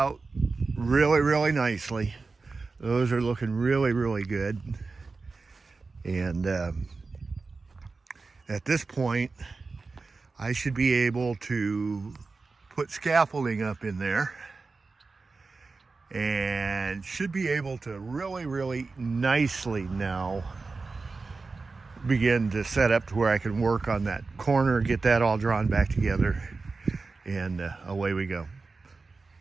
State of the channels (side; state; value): left; quieter; 4.0 dB